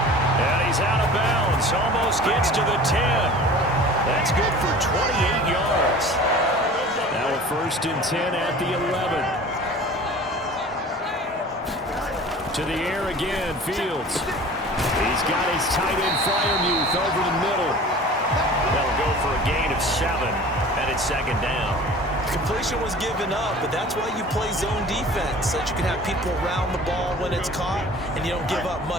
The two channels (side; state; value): both; normal; correlation 0.42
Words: And he's out of bounds, almost gets to the 10. That's good for 28 yards. Now a first and 10 at the 11. To the air again, Fields. He's got his tight end Freiermuth over the middle. They'll go for a gain of 7, and it's second down. Completion was given up, but that's why you play zone defense, so that you can have people around the ball when it's caught, and you don't give up